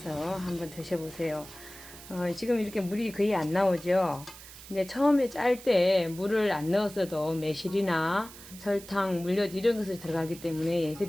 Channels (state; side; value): noise; right; hiss, 17 dB below the sound